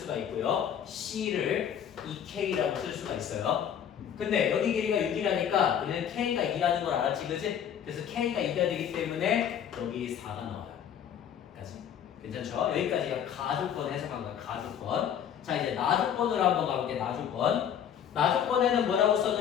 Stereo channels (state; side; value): quieter; right; 8.9 dB